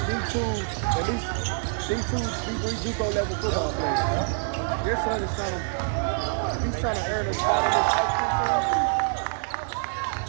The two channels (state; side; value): silent; left; 60 dB below the other